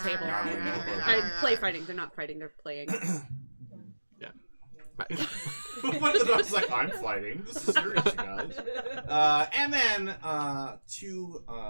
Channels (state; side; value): inverted; both; correlation -1.00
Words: I play fighting. They're not fighting. They're playing. One of the dogs is like, I'm fighting. This is serious, you guys. And then to